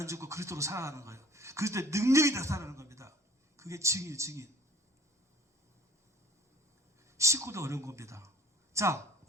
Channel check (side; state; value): both; normal; correlation 0.50